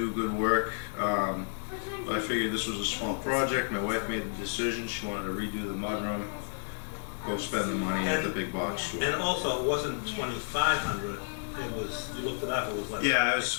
good work. But I figured this was a small project. My wife made the decision. She wanted to redo the mudroom. Go spend the money at the big box store. And also, it wasn't $2,500. It was, you looked it up, it was like... Yeah, it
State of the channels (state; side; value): silent; right; digital silence